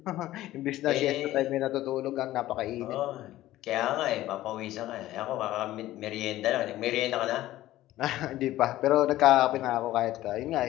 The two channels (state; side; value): quieter; right; 15.2 dB